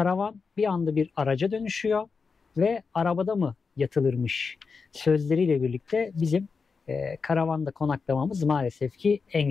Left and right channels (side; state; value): right; quieter; 5.0 dB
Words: bir anda bir araca dönüşüyor ve arabada mı yatılırmış sözleriyle birlikte bizim karavanda konaklamamız maalesef ki